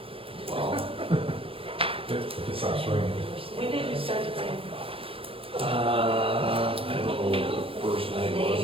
Well, If it stops raining. When did you start to bring? I don't know what the first night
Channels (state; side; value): late; left; 0.27 ms